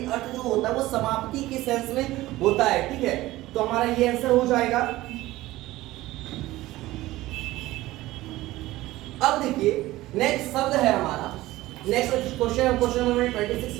अर्थ जो होता है वो समाप्ति के सेंस में होता है, ठीक है। तो हमारा ये आंसर हो जाएगा। अब देखिए नेक्स्ट शब्द है हमारा, नेक्स्ट क्वेश्चन नंबर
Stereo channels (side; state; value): left; quieter; 17.3 dB